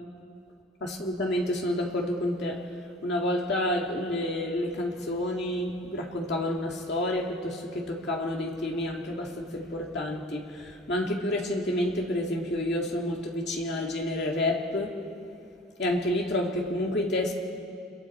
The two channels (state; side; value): normal; both; correlation 0.44